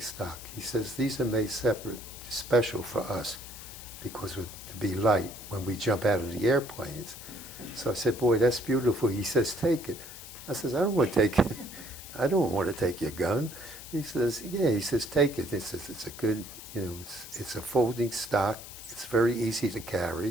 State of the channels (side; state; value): left; noise; hiss, 14 dB below the sound